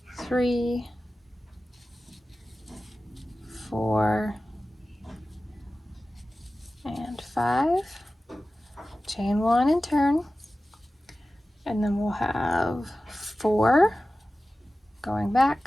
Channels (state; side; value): normal; both; correlation 0.96